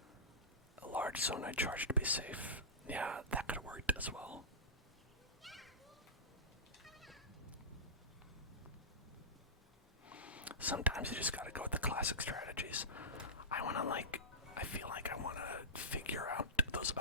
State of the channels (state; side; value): normal; both; correlation -0.18